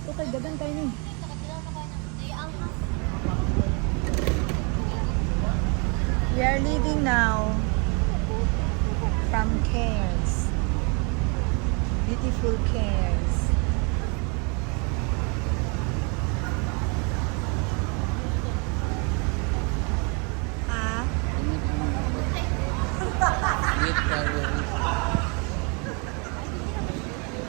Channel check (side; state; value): left; quieter; 33.7 dB